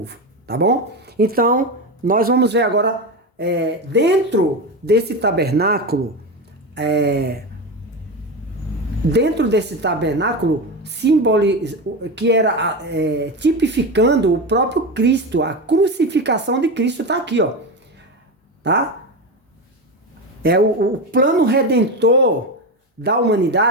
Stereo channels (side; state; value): both; normal; correlation 0.19